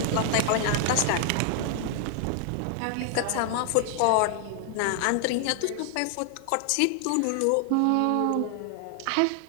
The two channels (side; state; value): both; different; correlation 0.00